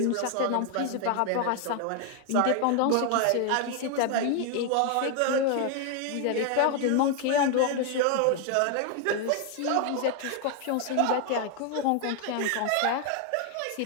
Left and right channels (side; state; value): both; different; correlation 0.00